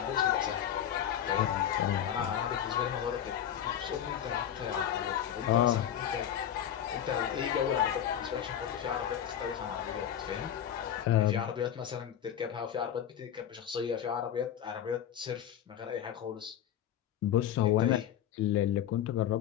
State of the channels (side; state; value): right; quieter; 10.1 dB